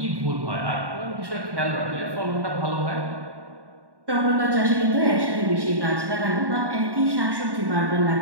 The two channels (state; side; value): late; left; 1.1 ms